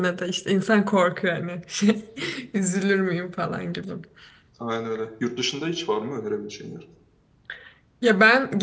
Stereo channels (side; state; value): both; identical; correlation 1.00